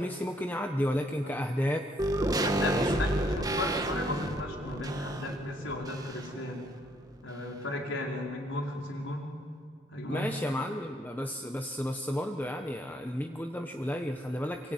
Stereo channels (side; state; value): both; normal; correlation 0.69